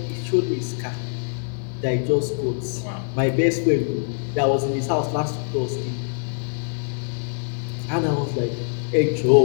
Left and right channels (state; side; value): silent; right; 63 dB below the other